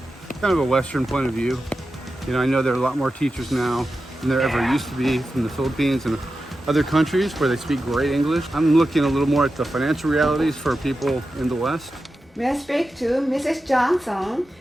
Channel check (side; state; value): both; normal; correlation 0.92